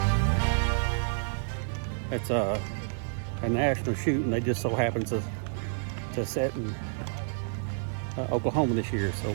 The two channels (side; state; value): left; silent; 58 dB below the other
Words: It's a national shoot, and they just so happen to set in Oklahoma this year. So